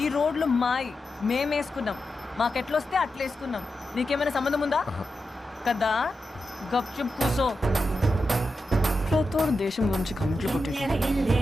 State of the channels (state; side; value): normal; both; correlation 0.89